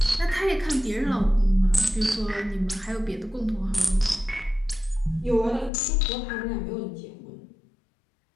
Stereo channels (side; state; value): right; drops out; at 5.7 s